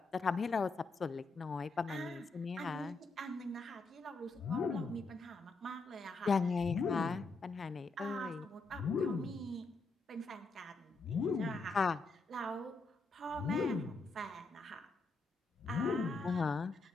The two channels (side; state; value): right; quieter; 3.6 dB